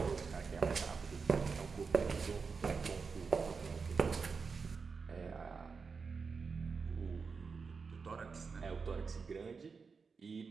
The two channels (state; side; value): quieter; left; 5.1 dB